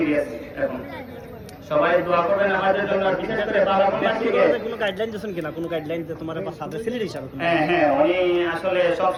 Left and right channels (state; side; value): identical; both; correlation 1.00